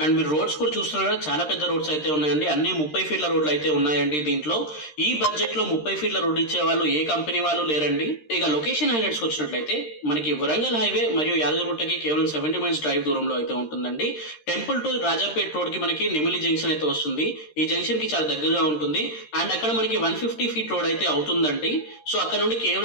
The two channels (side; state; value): right; late; 13 ms